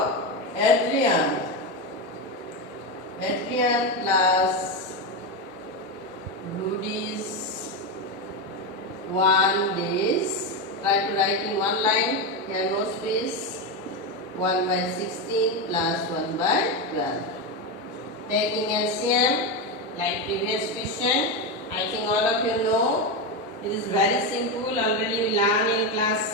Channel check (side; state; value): both; normal; correlation 0.12